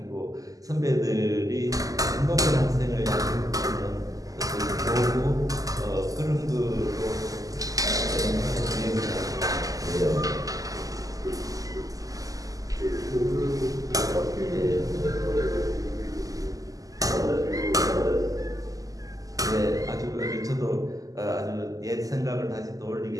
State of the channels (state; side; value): late; left; 0.17 ms